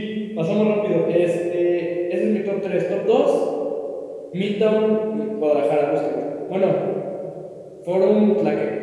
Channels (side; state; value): both; identical; correlation 1.00